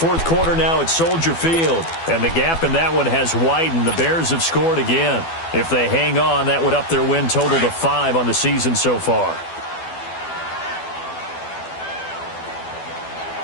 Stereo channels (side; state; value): right; late; 12 ms